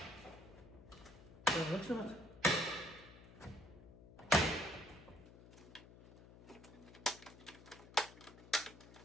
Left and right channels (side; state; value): left; noise; hum, 18 dB below the sound